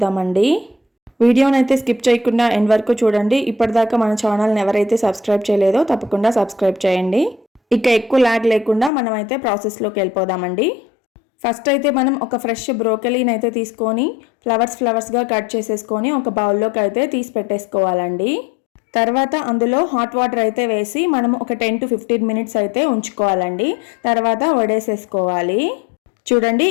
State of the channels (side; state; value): right; drops out; at 8.9 s